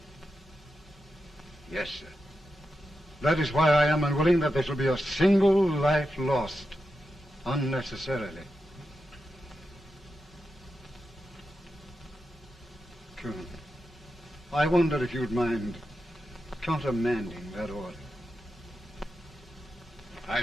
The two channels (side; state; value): both; normal; correlation 0.89